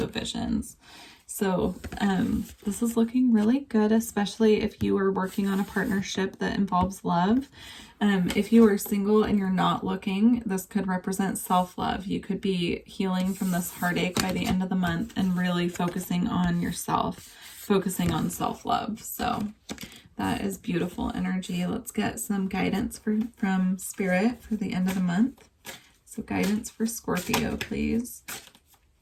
Visions. So this is looking really good, especially if you are working on a partnership that involves love. If you are single and you're not looking, this could represent self-love. You could be healing from this heartache by the end of the month and really focusing on yourself, focusing on self-love. So that is beautiful energy. Let's get some guidance from Spirit for the end of the month. So guidance for Scorpio, please.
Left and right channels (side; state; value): both; identical; correlation 1.00